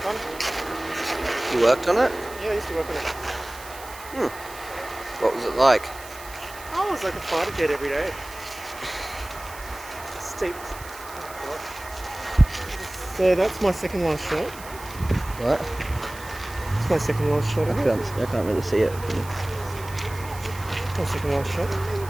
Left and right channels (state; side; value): noise; right; hiss, 16 dB below the sound